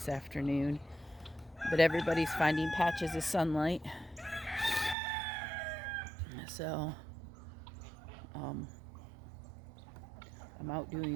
afternoon. But everybody's finding patches of sunlight. So, I'm out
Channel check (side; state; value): left; drops out; at 5.0 s